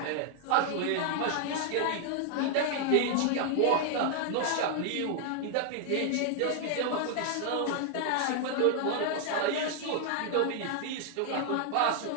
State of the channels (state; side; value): different; both; correlation 0.00